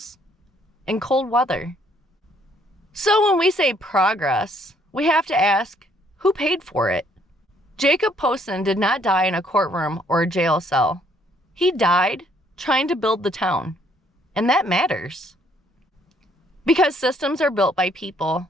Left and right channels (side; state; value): both; normal; correlation 0.66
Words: and cold weather. So when we say progress, we have to ask, who paid for it? Jacob Posson did not die in a courtroom or a jail cell. He died trying to build the town, and that matters. Because systems are built by people,